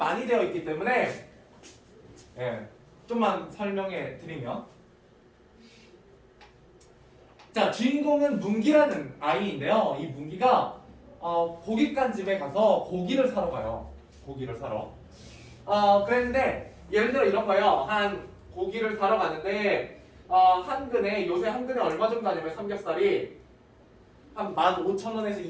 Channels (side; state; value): both; identical; correlation 1.00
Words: 되어 있기 때문에 좀만 설명해 드리면, 자, 주인공은 문기라는 아이인데요. 이 문기가 고깃간 집에 가서 고기를 사러 가요. 고기를 사러. 그랬는데 예를 들어 이런 거예요. 한 고기를 사러 가는데 한 근에, 요새 한 근에 얼마 정도 하냐면 삼겹살이 한 15,000원에서